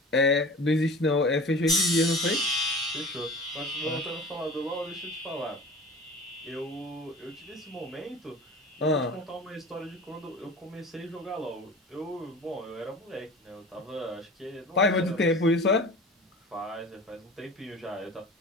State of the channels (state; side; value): normal; both; correlation 0.38